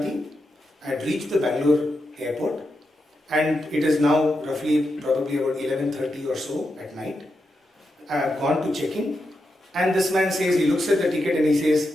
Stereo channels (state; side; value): normal; both; correlation 0.86